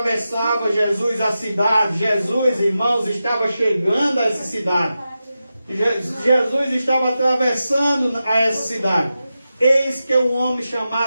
Jesus a cidade. Jesus, irmãos, estava chegando a essa cidade. Jesus estava atravessando a essa cidade. Eis que um homem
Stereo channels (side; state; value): both; inverted; correlation -0.91